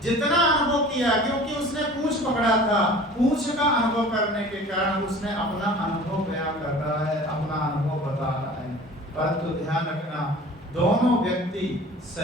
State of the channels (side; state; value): both; normal; correlation 0.43